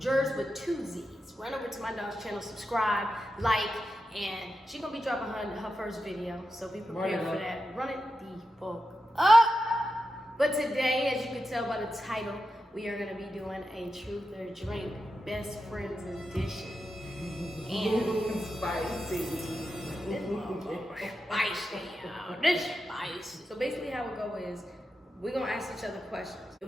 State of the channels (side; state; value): both; normal; correlation 0.89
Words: with 2 Z's. Run over to my dog's channel, subscribe, like, and she gonna be dropping her first video. So be prepared for that. Run it the fuck up. But today, as you can tell by the title, we are gonna be doing a truth or drink best friends edition. And spicy. Spicy, y'all. This spicy. So basically how it go is we're gonna ask each other questions.